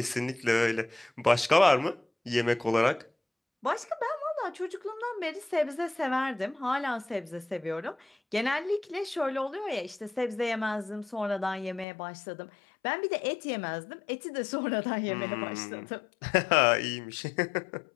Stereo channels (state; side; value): drops out; right; at 11.9 s